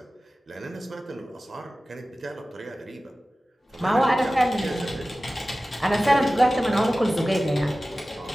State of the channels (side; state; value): both; normal; correlation 0.96